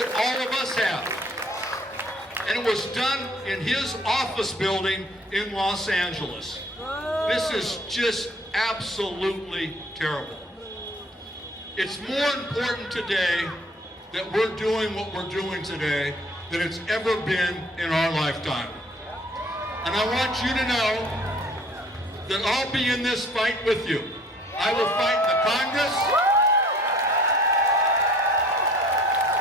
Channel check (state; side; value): normal; both; correlation 0.54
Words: all of us have. And it was done in his office building in Los Angeles. This is just absolutely terrible. It's more important today that we're doing what we're doing today than it's ever been in our lifetime. And I want you to know that I'll be in this fight with you. I will fight in the Congress.